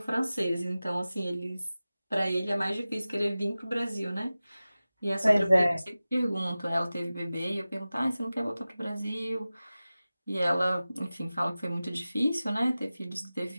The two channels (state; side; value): inverted; both; correlation -0.96